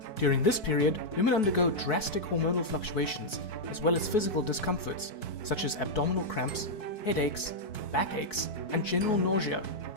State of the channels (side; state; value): right; late; 4.6 ms